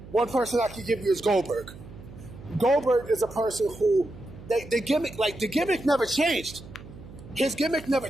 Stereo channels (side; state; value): right; noise; hum, 17 dB below the sound